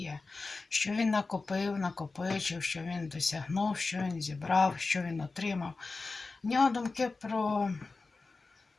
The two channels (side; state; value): right; quieter; 3.8 dB